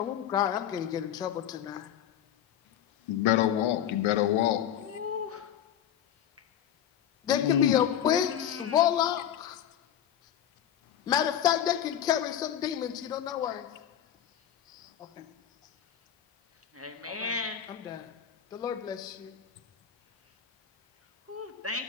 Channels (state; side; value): quieter; right; 10.2 dB